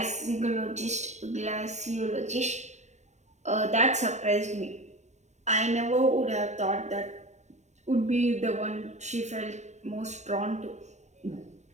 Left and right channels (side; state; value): left; late; 0.34 ms